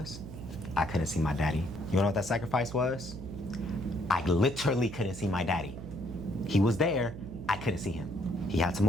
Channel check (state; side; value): noise; right; hum, 12 dB below the sound